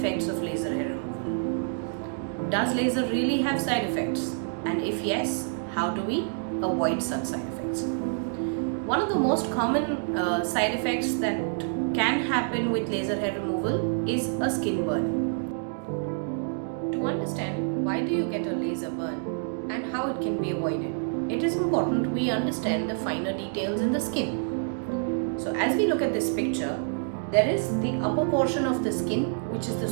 of laser hair removal. Does laser really have side effects? And if yes, how do we avoid such side effects? One of the most common side effects that can happen with laser hair removal is a skin burn. To understand why do you get a laser burn and how it can be avoided, it is important we understand the finer details in the skin. So as we look at this picture, there is the upper portion of the skin, which is the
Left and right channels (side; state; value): left; silent; digital silence